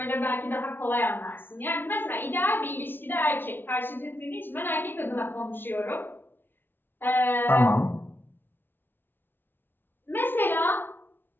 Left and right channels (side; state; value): right; late; 0.10 ms